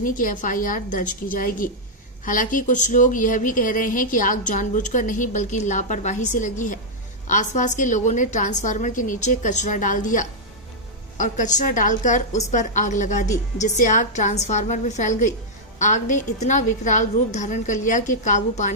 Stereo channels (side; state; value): both; normal; correlation -0.06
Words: की एफआईआर दर्ज की जाएगी। हालांकि कुछ लोग यह भी कह रहे हैं कि आग जानबूझकर नहीं बल्कि लापरवाही से लगी है। आसपास के लोगों ने ट्रांसफार्मर के नीचे कचरा डाल दिया और कचरा डालकर उस पर आग लगा दी, जिससे आग ट्रांसफार्मर में फैल गई। आग ने इतना विकराल रूप धारण कर लिया कि काबू